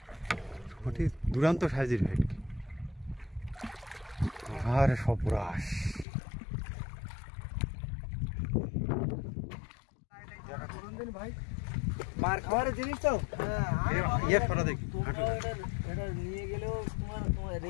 ওটি দুর্দান্ত সাইজের ভেটকি। আর সর্বনাশ, ভাই মার খাওয়ার জিনিস তো এটা নিয়ে গেলেও তোমার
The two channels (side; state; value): right; drops out; at 6.1 s